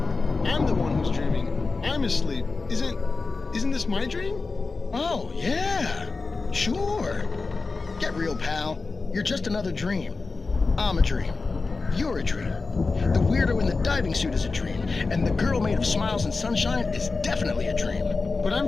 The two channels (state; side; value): quieter; right; 4.0 dB